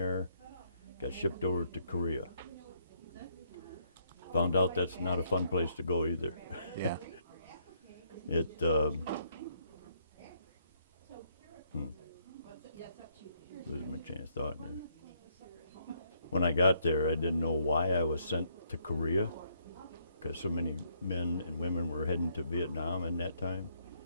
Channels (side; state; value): both; inverted; correlation -0.70